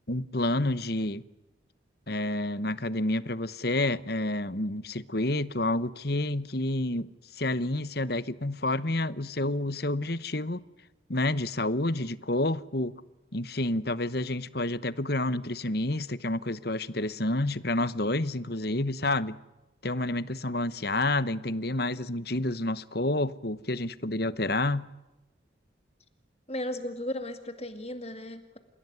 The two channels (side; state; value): both; normal; correlation 0.40